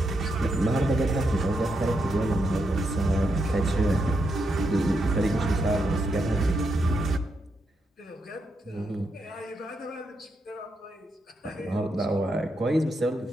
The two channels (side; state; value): both; normal; correlation 0.82